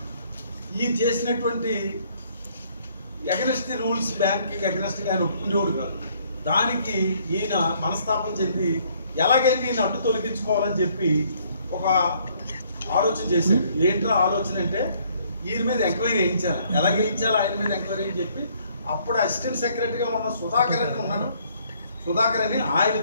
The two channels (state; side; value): inverted; both; correlation -0.64